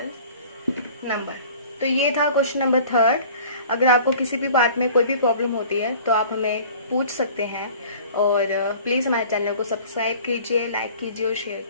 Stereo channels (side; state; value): both; inverted; correlation -0.46